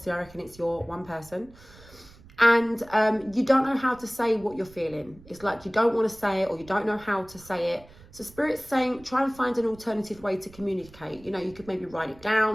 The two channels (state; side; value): noise; right; rumble, 23 dB below the sound